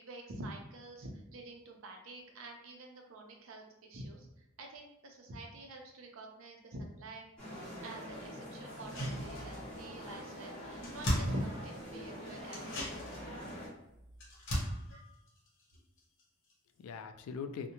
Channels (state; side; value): normal; both; correlation 0.60